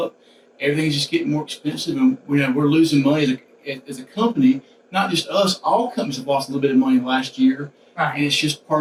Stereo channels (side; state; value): both; identical; correlation 1.00